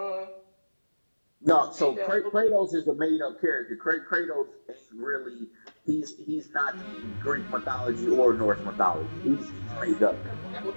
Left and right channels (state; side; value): inverted; both; correlation -1.00